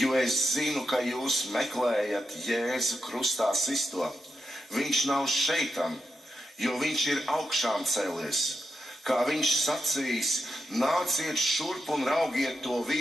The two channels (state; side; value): normal; both; correlation 0.87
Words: es zinu, ka jūs meklējat Jēzu krustā sisto. Viņš nav šeitam, jo viņš ir augšām cēlies. Kā viņš sacījis, nāciet šurp un raugiet to